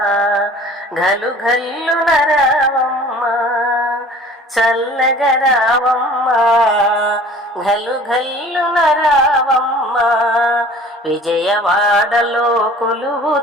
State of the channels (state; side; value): normal; both; correlation 0.47